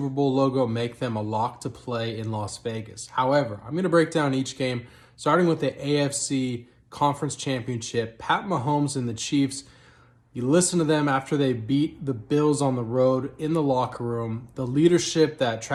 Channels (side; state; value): both; identical; correlation 1.00